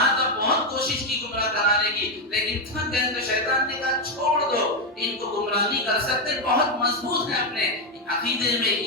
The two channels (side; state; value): both; normal; correlation 0.06